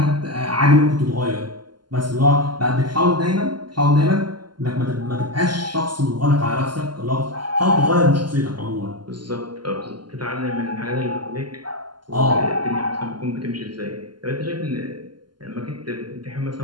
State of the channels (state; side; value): late; left; 0.71 ms